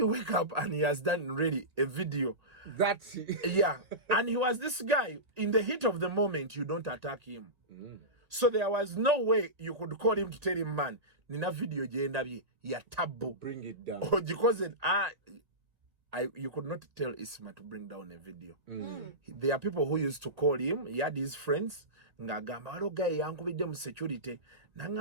wake up and he has done really a video. That's yeah, and he was this guy in the heat of the moment. You don't attack him. So there was no way you could call him to tell him, man, nina video jendabye ya tabu. Bring it down. Or because you could not tell Isma to bring down a video. There are people who used to call him. He had his friends. Ngagamba walo guy yankubidde mu security.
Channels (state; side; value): late; left; 1.9 ms